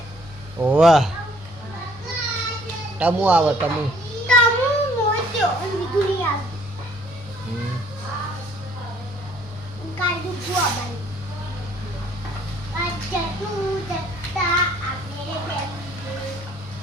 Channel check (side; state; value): both; normal; correlation 0.60